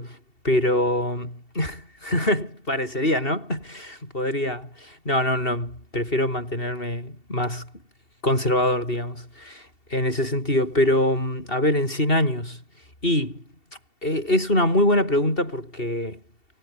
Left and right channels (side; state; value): right; late; 2.7 ms